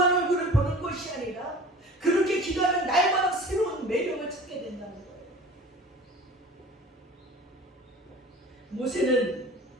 얼굴을 보는 것이 아니라 그렇게 기도하면 날마다 새로운 매력을 찾게 된다는 거예요. 모세는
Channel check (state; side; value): normal; both; correlation 0.42